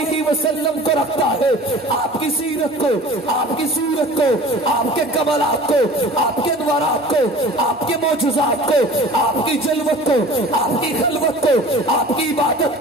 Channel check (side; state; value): both; normal; correlation 0.43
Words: وسلم کو رکھتا ہے. آپ کی سیرت کو، آپ کی صورت کو، آپ کے کمالات کو، آپ کے انوارات کو، آپ کے معجزات کو، آپ کی جلوت کو، آپ کی خلوت کو، آپ کی عبادت